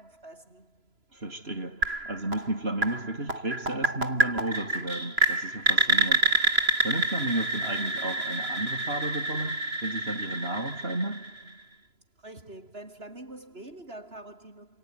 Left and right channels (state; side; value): late; left; 3.0 ms